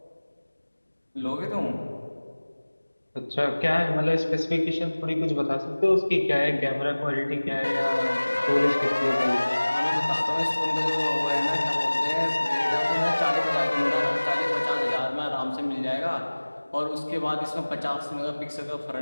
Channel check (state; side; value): inverted; both; correlation -1.00